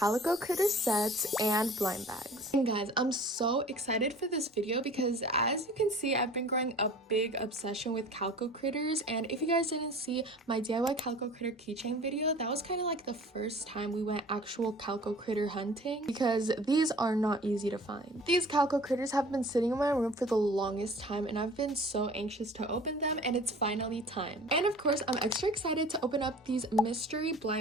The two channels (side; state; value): both; normal; correlation 0.45